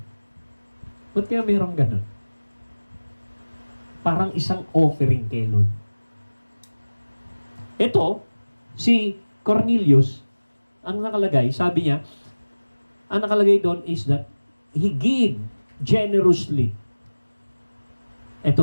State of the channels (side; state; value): both; inverted; correlation -1.00